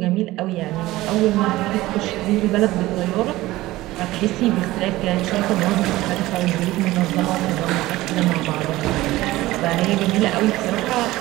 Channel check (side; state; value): left; quieter; 17.6 dB